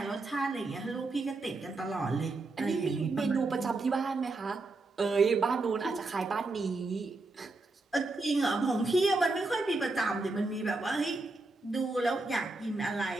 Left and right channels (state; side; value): quieter; left; 3.3 dB